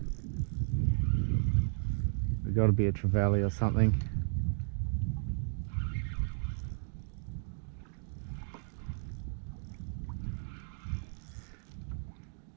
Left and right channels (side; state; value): left; silent; digital silence